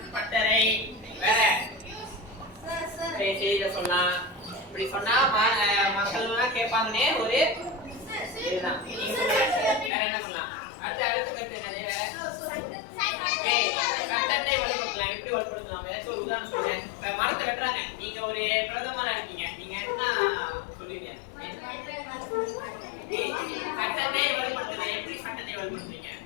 பட்டறை, வேற செய்தியில சொல்லலாம். இப்படி சொன்னா மக்கள் எல்லாம் கேட்பாங்கன்னே ஒரு இதுதான். வேற என்ன பண்ணலாம்? அடுத்த கருத்து என்னது? சட்டத்தை வலுப்படுத்தலாம். எப்படி வலுப்படுத்தலாம்? ஏதாச்சும் ஒரு உதாரணம் சொல்றேன். இப்ப மரத்தை வெட்டுறாங்க. நீங்க ஒரு பிரதமரா இருக்கீங்க. நீங்க என்ன சொல்லுவீங்க? சட்டத்தை வலுப்படுத்தலாம். எப்படி சட்டத்தை வலுப்படுத்துறீங்க?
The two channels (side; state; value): right; drops out; at 9.9 s